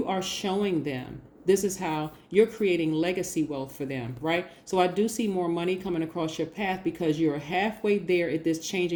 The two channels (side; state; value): both; identical; correlation 1.00